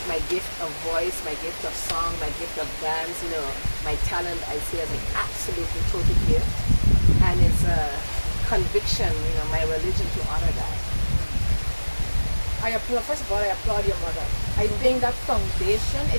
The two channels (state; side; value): inverted; both; correlation -1.00